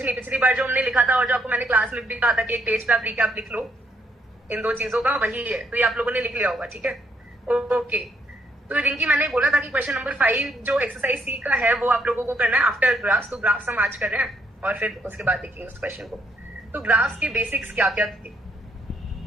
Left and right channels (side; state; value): both; normal; correlation 0.72